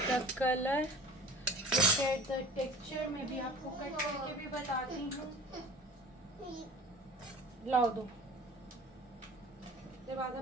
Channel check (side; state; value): both; normal; correlation 0.43